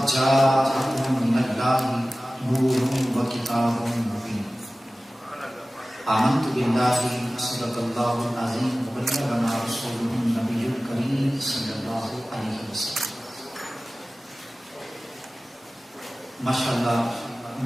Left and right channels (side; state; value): both; normal; correlation 0.97